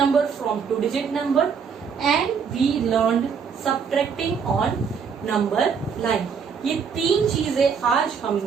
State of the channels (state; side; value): quieter; left; 6.4 dB